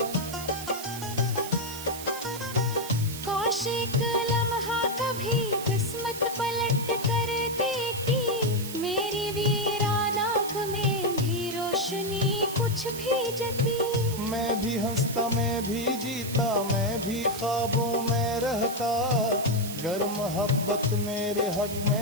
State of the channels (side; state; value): right; noise; hiss, 10 dB below the sound